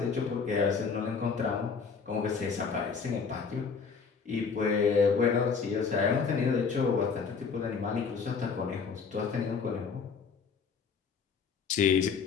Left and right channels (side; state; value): right; quieter; 5.5 dB